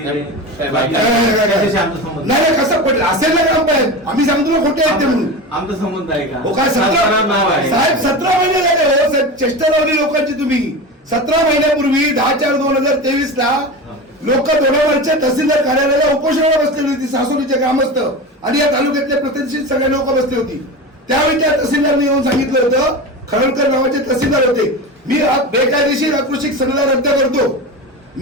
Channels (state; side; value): normal; both; correlation 0.26